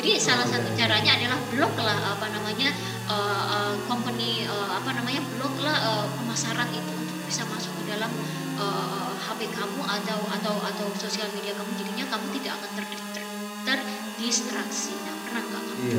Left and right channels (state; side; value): identical; both; correlation 1.00